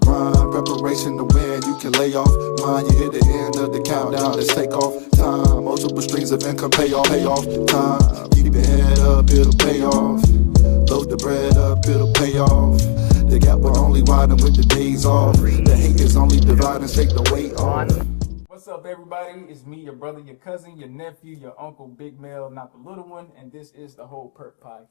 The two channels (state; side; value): silent; right; digital silence